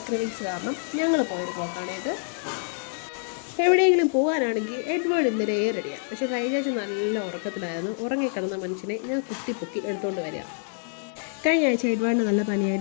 ക്രേവിങ്സ് കാരണം ഞങ്ങൾ പോയൊരു പോക്കാണ് ഇത്. എവിടെയെങ്കിലും പോകാനാണെങ്കിൽ എഡ്വേർഡ് ഇന്നലെ റെഡിയാണ്. പക്ഷേ സൈജാച്ച് നല്ല ഉറക്കത്തിലായിരുന്നു. ഉറങ്ങിക്കിടന്ന മനുഷ്യനെ ഞാൻ കുത്തിപ്പൊക്കി എടുത്തുകൊണ്ട് വരിക. കഴിഞ്ഞ ആഴ്ച എഡ്വേർഡിന് നല്ല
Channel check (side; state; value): right; silent; digital silence